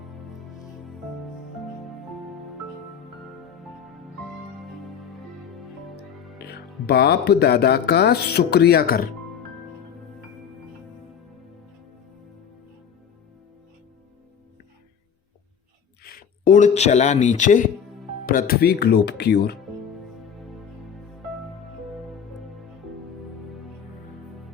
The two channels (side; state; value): right; quieter; 7.6 dB